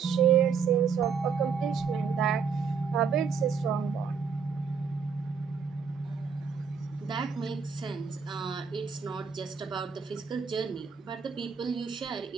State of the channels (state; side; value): quieter; left; 6.0 dB